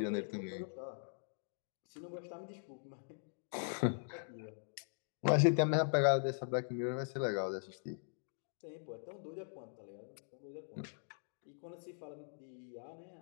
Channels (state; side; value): silent; right; digital silence